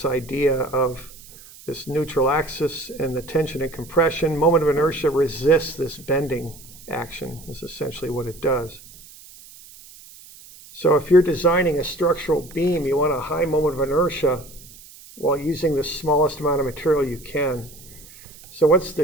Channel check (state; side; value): noise; right; hiss, 20 dB below the sound